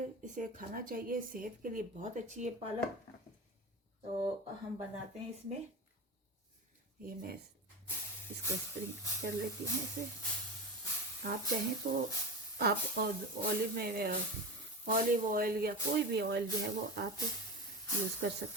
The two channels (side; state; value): both; normal; correlation 0.25